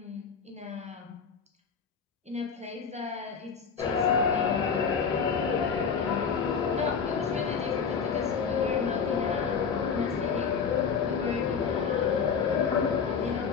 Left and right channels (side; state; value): right; quieter; 6.2 dB